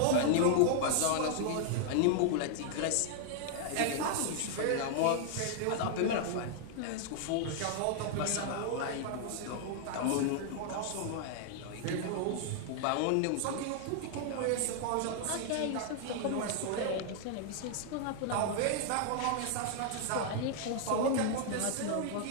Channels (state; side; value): different; both; correlation 0.00